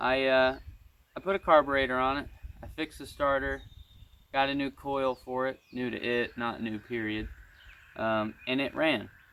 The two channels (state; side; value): identical; both; correlation 1.00